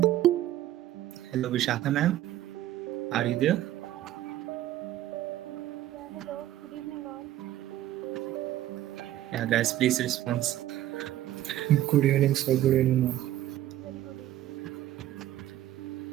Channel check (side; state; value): left; quieter; 13.6 dB